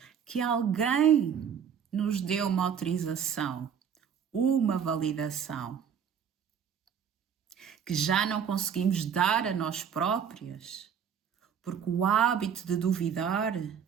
que alguém nos deu uma autorização, uma validação, que já não conseguimos dar a nós próprias, porque o hábito de duvidar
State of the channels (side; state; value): left; quieter; 7.8 dB